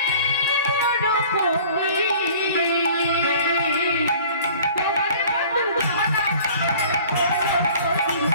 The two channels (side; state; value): both; inverted; correlation -0.48